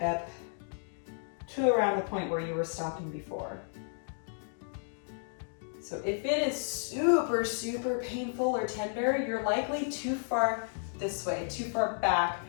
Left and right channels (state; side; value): silent; right; digital silence